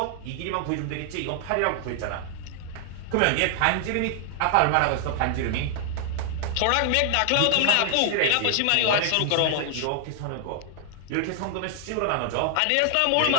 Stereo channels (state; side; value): different; both; correlation 0.00